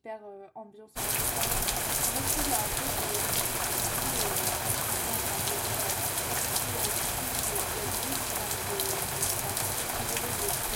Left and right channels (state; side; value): identical; both; correlation 1.00